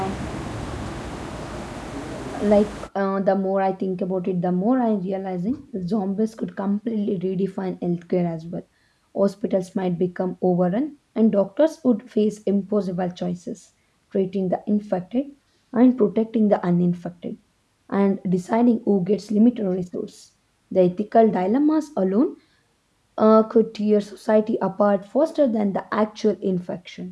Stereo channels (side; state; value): both; identical; correlation 1.00